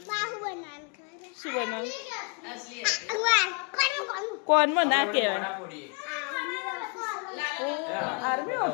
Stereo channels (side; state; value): right; quieter; 35.8 dB